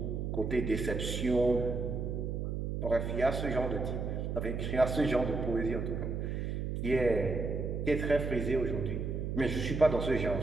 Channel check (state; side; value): noise; right; hum, 2 dB below the sound